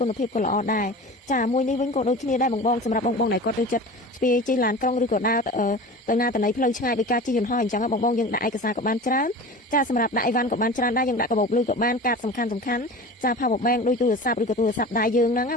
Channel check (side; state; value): both; normal; correlation 0.36